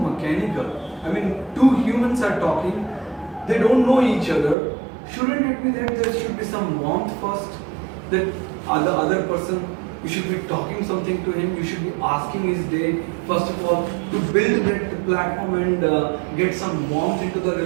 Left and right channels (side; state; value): left; drops out; at 4.5 s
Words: I mean, two humans are talking. They don't know each other. Shouldn't it be that there should be some warmth first? That the other person You should be talking something to him. You should be asking his day. First of all, to build that platform and get some warmth into the